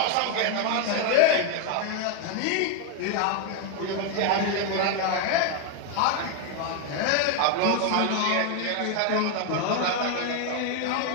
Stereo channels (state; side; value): different; both; correlation 0.01